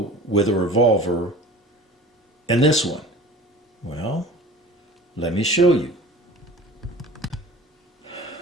with a revolver and this one? Well, let me show you.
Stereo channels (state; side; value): normal; both; correlation 0.41